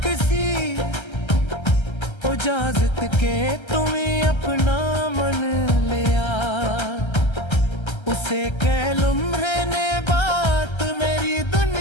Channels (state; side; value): late; right; 1.3 ms